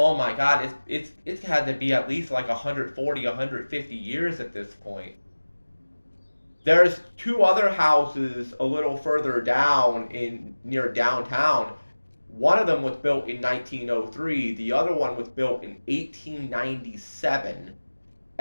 my God, it's had to be at least like 140, 150 years at this point. There's two other houses a little further down in near downtown. One of them was built in 1903. The other one was built in 1897.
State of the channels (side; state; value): both; inverted; correlation -1.00